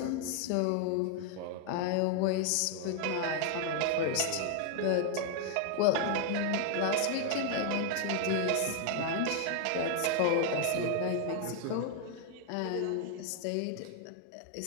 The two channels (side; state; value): both; different; correlation 0.00